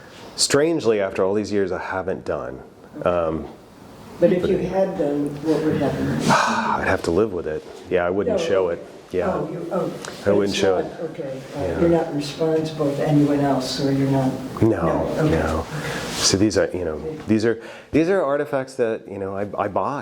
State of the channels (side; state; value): both; identical; correlation 1.00